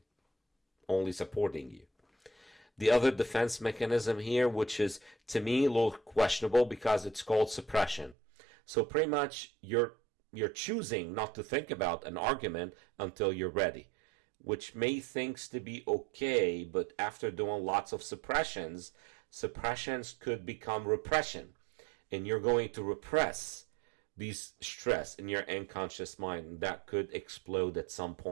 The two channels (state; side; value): drops out; left; at 8.2 s